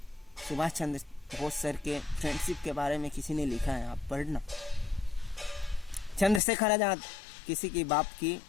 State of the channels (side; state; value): right; drops out; at 6.4 s